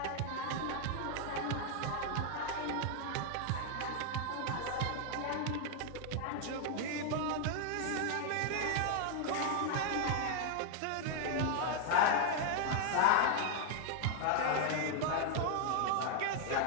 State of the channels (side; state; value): both; different; correlation 0.00